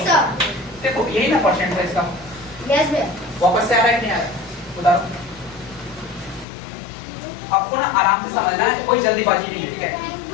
देखो यही ना परसेंट है इसका। यस भैया। वापस से आ रहा है कि नहीं आ रहा है, बताओ। आपको ना आराम से समझना है, कोई जल्दीबाजी नहीं है। ठीक है,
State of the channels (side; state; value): right; drops out; at 6.5 s